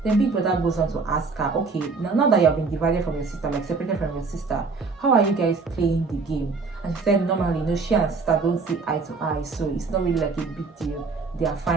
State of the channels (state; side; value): quieter; left; 4.4 dB